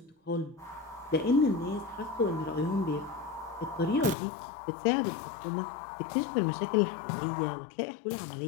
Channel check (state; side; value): drops out; right; at 4.2 s